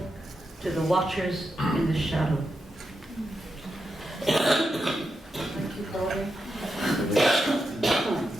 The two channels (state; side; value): normal; both; correlation 0.86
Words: to the watchers in the shadow. Thank you, Pauline.